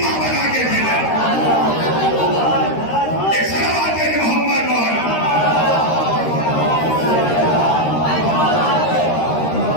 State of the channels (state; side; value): late; right; 13 ms